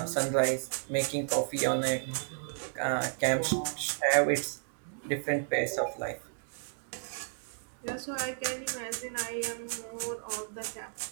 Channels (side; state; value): left; silent; digital silence